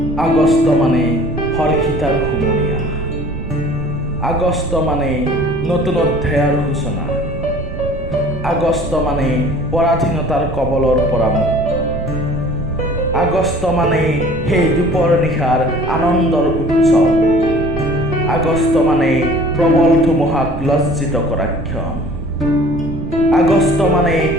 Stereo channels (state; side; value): noise; right; rumble, 9 dB below the sound